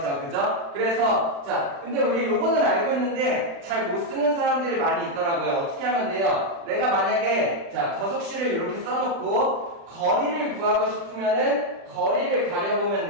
그죠? 그래서 자, 근데 우리 요거는 알고 있는데 잘 못 쓰는 사람들이 많이 있더라고요. 어떻게 하면 돼요? 내가 만약에 자, 거속시를 이렇게 써놓고 거리를 구하고 싶으면은 거리를 가려보면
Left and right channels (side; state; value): left; late; 35 ms